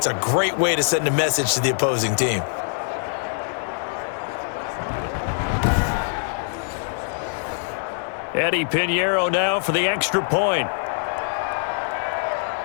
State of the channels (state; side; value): silent; right; 62 dB below the other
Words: a great way to send a message to the opposing team. Eddie Pinheiro now for the extra point.